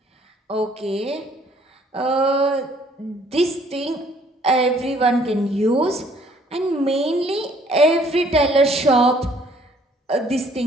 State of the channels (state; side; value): normal; both; correlation 0.61